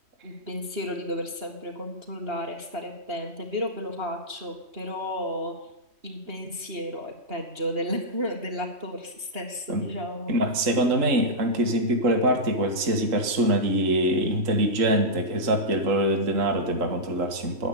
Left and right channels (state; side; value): late; left; 3.1 ms